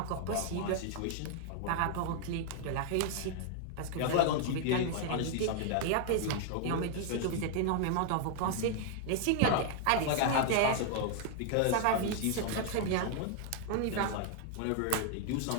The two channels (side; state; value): both; different; correlation 0.00